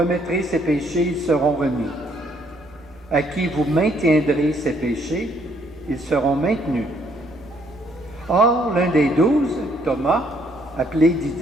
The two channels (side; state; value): both; normal; correlation 0.67